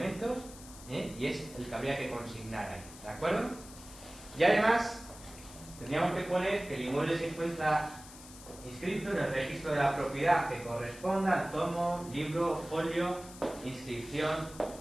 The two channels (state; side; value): noise; left; hiss, 17 dB below the sound